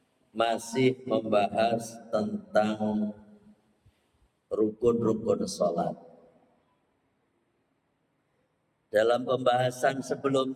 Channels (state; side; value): identical; both; correlation 1.00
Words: masih membahas tentang rukun-rukun sholat. Dalam pembahasan